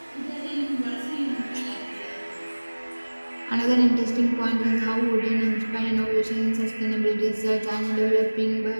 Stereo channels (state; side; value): inverted; both; correlation -1.00